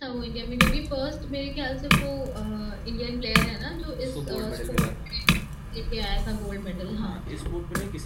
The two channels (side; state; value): both; identical; correlation 1.00